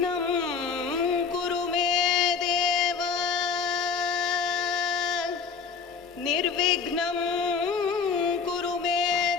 कुरु मे देव निर्विघ्नं कुरु मे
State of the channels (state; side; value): quieter; right; 5.7 dB